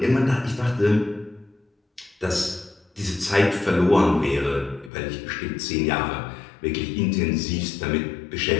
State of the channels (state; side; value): drops out; right; at 4.9 s